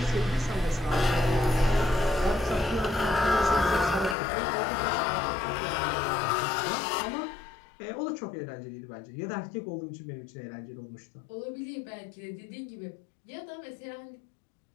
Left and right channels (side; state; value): right; drops out; at 4.2 s